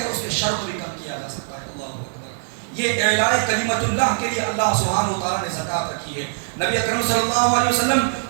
اس کے شر کو بھی کم کیا جا سکتا ہے۔ اللہ اکبر۔ یہ اعلاء کلمت اللہ کے لیے اللہ سبحانہ و تعالیٰ نے زکوٰۃ رکھی ہے۔ نبی اکرم صلی اللہ علیہ وسلم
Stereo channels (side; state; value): left; silent; digital silence